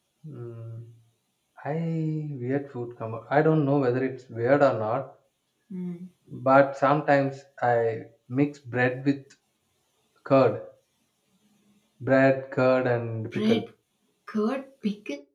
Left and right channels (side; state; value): both; identical; correlation 1.00